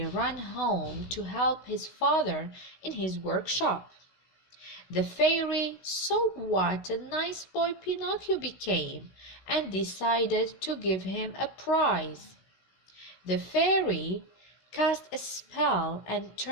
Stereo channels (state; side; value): late; right; 16 ms